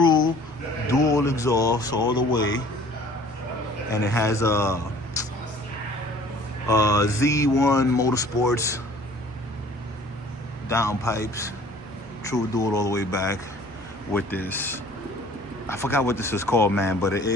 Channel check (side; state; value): both; normal; correlation 0.51